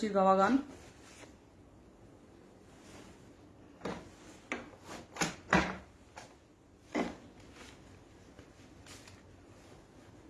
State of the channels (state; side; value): identical; both; correlation 1.00